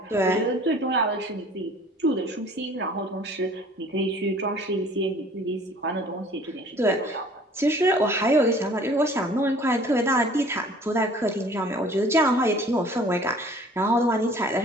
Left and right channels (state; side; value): normal; both; correlation 0.51